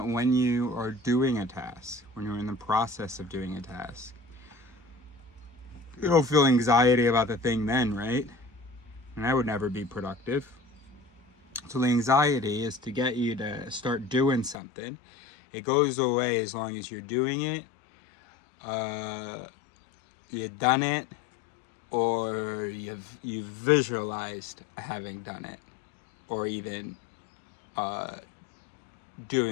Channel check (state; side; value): drops out; right; at 14.6 s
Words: when you are doing a task, when you're in the process of doing a task, you don't feel anxiety about the thing then, right? And that would never be productive. So the anxiety is to get you to start doing something. It goes away as long as you're doing it, you've done it, or you've visualized having done it, or even